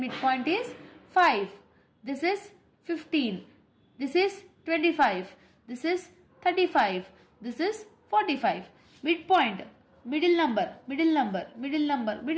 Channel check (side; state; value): both; identical; correlation 1.00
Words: is 5. This is 15. This is 25. This is 35. This is 45. Midpoint, middle number, middle number, middle number,